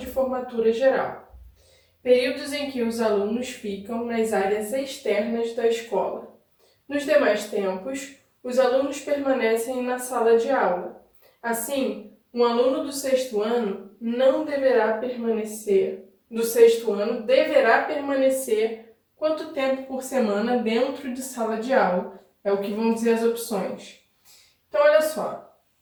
formatura geral. Períodos em que os alunos ficam nas áreas externas da escola. Nos demais tempos, os alunos permanecem na sala de aula. Assim, um aluno do sexto ano deverá permanecer quanto tempo por semana dentro de sala de aula? É o que vão dizer as opções. Então, olha só.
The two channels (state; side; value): identical; both; correlation 1.00